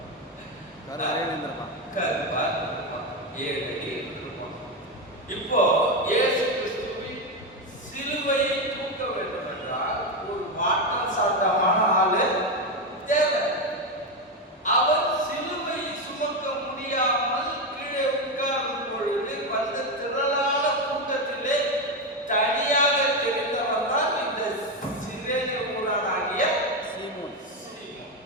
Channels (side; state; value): both; normal; correlation 0.11